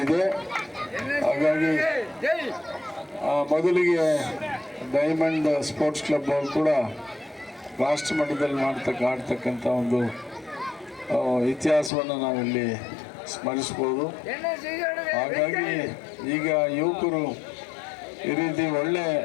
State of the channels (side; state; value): right; drops out; at 11.9 s